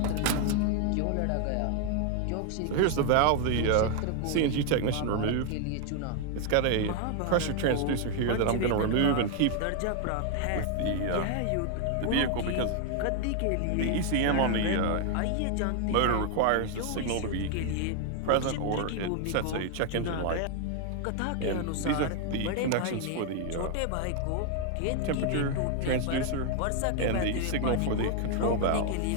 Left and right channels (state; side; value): different; both; correlation 0.00